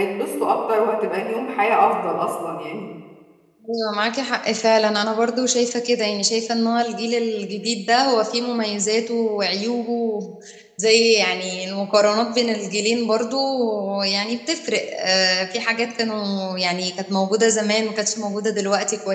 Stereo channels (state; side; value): identical; both; correlation 1.00